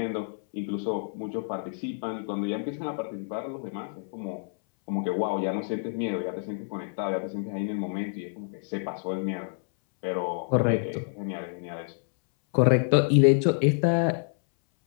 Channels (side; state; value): right; silent; 59 dB below the other